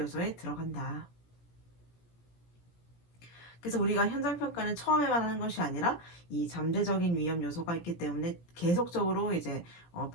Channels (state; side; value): late; right; 17 ms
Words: 들어간다. 그래서 우리가 현장 평가는 처음에만 하는 것이 아니라 이 잠재적인 위험 요소가 있기 때문에 계속적으로 이제